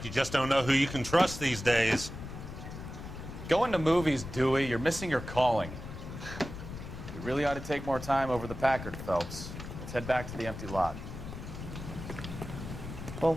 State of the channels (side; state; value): left; noise; rumble, 10 dB below the sound